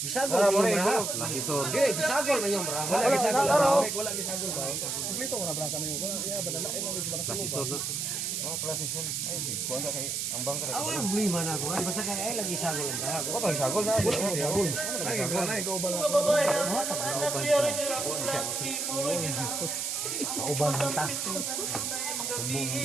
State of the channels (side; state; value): right; noise; hiss, 2 dB below the sound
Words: inyong braha. Hindi, bisagol inyong braha. Wala bisagol. Wala bisagol ba? Kumplito ko na braha kami. Klasisor na. Klasisor. Ay, kuha na kay ang bangka. Ang buliman ako. Basta ka ay lagi sagol ang braha. Wala bisagol na. Wala bisagol. Ay, ikaw ba lang? Kauban mo ta.